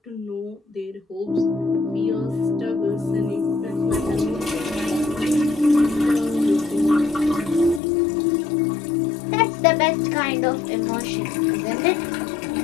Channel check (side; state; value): right; drops out; at 7.8 s